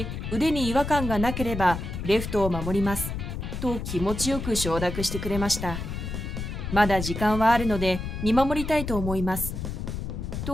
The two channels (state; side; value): noise; left; rumble, 5 dB below the sound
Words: 腕に違和感がなければレフトを守ります。と気持ちよく承諾してくれました。まだ時間はあるので見守りたいと思います。